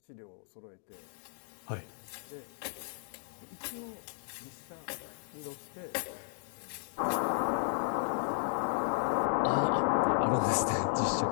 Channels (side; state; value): right; silent; digital silence